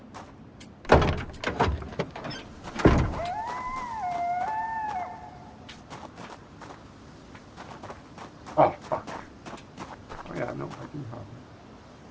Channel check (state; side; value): identical; both; correlation 1.00